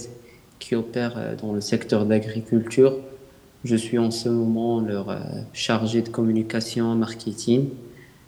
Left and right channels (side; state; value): both; identical; correlation 1.00